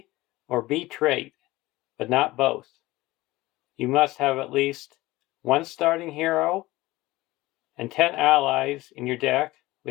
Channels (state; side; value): quieter; right; 18.8 dB